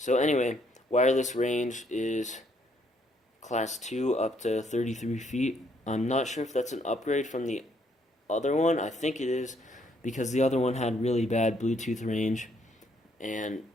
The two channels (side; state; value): both; normal; correlation 0.69